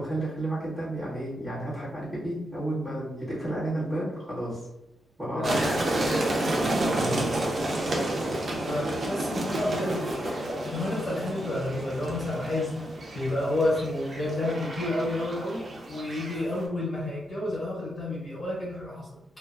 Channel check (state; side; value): normal; both; correlation 0.82